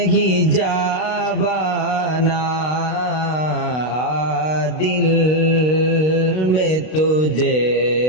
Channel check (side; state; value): right; late; 32 ms